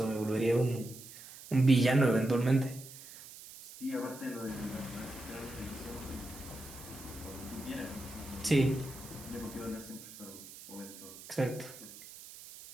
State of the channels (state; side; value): noise; right; hiss, 16 dB below the sound